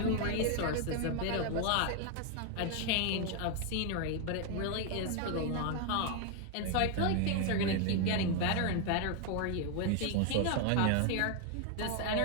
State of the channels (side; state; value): both; different; correlation 0.01